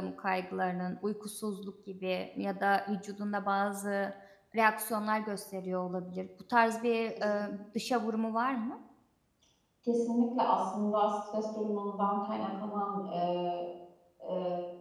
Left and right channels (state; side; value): identical; both; correlation 1.00